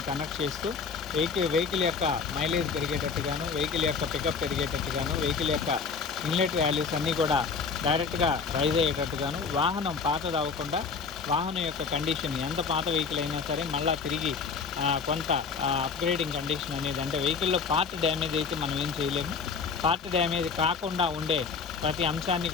కనెక్ట్ చేస్తూ వెహికల్ యొక్క మైలేజ్ పెరిగేటట్టుగాను, వెహికల్ యొక్క పికప్ పెరిగేటట్టుగాను, వెహికల్ యొక్క ఇన్లెట్ వాల్యూస్ అన్నీ కూడా డైరెక్ట్గా రైజ్ అయ్యేటట్టుగాను, వాహనం పాతది అవ్వకుండా వాహనం యొక్క కండిషన్ ఎంత పాత వెహికల్ అయినా సరే మళ్ళీ తిరిగి కొంత అప్గ్రేడింగ్ కండిషన్ అనేది, అంటే వెహికల్లో పార్ట్ డ్యామేజ్ అయితే మనం ఏం చేయలేము. పార్ట్ డ్యామేజ్ కాకుండా ఉండే ప్రతి అంశాన్ని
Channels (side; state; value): right; quieter; 5.3 dB